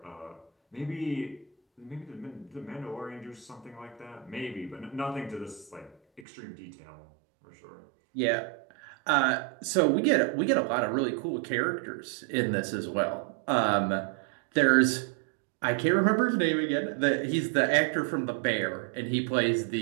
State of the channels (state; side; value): drops out; left; at 6.2 s